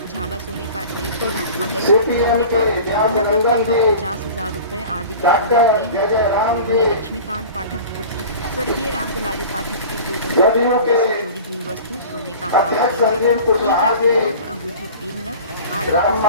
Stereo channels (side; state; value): both; inverted; correlation -0.39